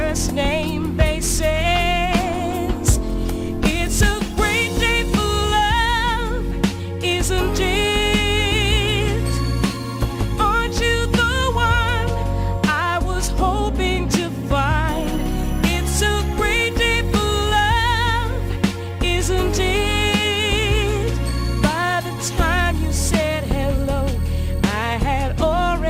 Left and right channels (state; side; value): identical; both; correlation 1.00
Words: name basis. It's a great day for love, isn't it? Aren't you the one I was hoping to find? It's a great day for love, isn't it? By the time you said hello, I had